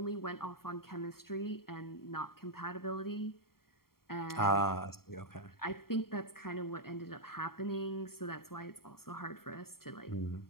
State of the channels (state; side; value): late; right; 0.93 ms